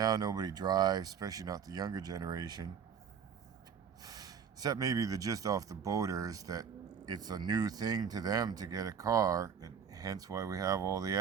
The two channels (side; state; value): left; quieter; 7.3 dB